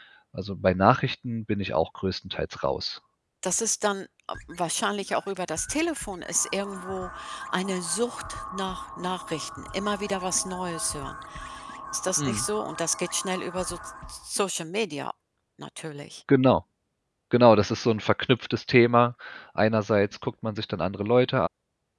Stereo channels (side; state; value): both; identical; correlation 1.00